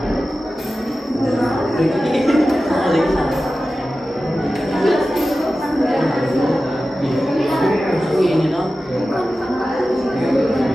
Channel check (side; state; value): both; normal; correlation 0.94